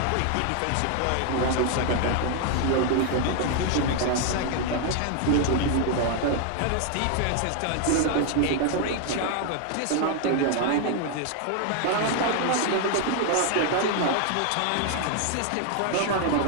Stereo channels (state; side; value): different; both; correlation 0.00